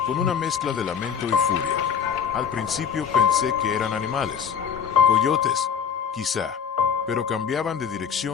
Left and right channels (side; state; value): right; quieter; 7.5 dB